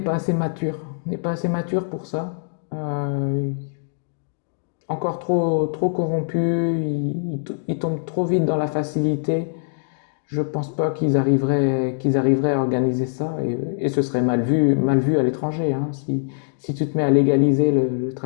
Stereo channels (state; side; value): silent; right; digital silence